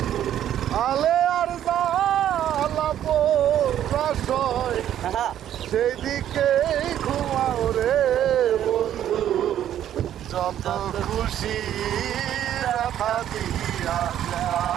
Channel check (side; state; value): left; quieter; 11.0 dB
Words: আলে আর সেই দিকে ঘুমাও রে বন্ধু, যত খুশি রাখা দিয়া